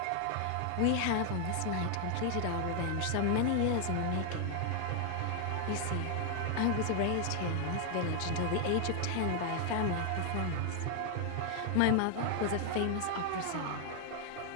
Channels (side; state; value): both; different; correlation 0.00